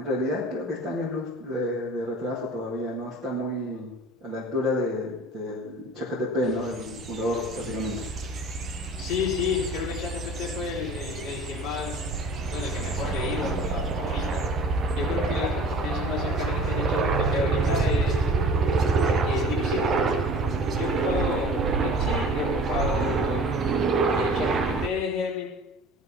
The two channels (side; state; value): both; normal; correlation 0.43